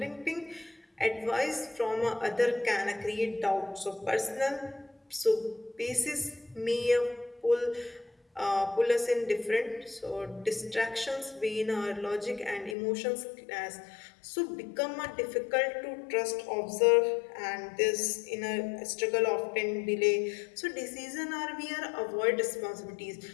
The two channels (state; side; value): drops out; right; at 12.8 s